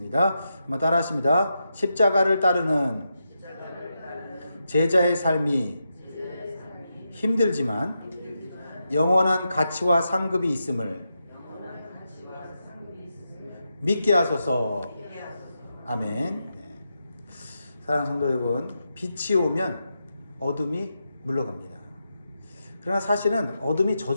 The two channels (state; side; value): inverted; both; correlation -0.86